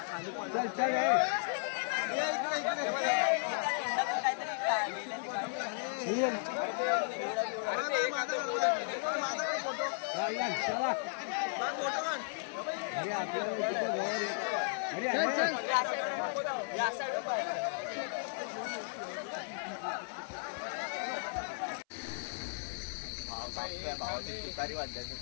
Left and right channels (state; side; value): silent; right; 54 dB below the other